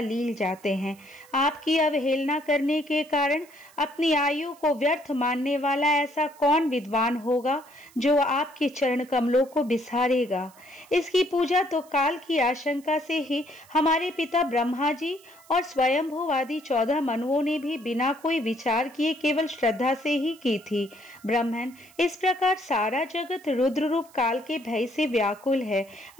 जाते हैं। आपकी अवहेलना करने के कारण अपनी आयु को व्यर्थ मानने वाला ऐसा कौन विद्वान हो जो आपके चरण कमलों को बिसारेगा। इसकी पूजा तो काल की आशंका से ही हमारे पिता ब्रह्मा जी और स्वयंभुवादि 14 मनुओं ने भी बिना कोई विचार किए केवल श्रद्धा से ही की थी। ब्रह्मन, इस प्रकार सारा जगत रुद्र रूप काल के भय से व्याकुल है।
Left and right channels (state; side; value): noise; right; hiss, 26 dB below the sound